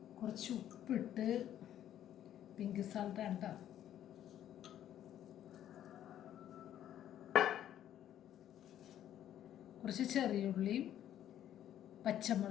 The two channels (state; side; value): quieter; right; 11.3 dB